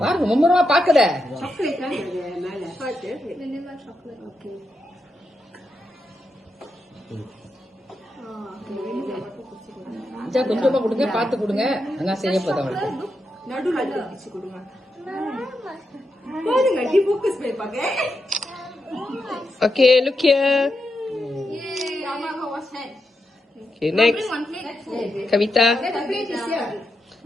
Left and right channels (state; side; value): normal; both; correlation 0.85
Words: பாருங்க மும்மரமா பாக்குற சாக்லேட் தான் மேல பாத்து வெண்ணிலா சாக்லேட். ஓகே அச்சா கொஞ்சமா கொடுங்க பாத்து கொடுங்க நான் செய்ய போறேன் அவங்களுக்கு நடுவுல பிடிச்சு கொடுங்க. பாருங்க டி ஃபோக்கஸ் பண்ணி பாக்க. Okay, look here. Yay, Rama was head. Okay, next. Kavita.